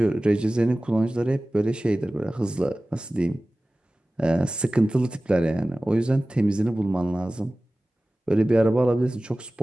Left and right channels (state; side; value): normal; both; correlation 0.97